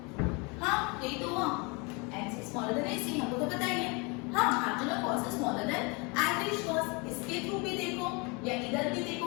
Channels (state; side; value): quieter; right; 29.6 dB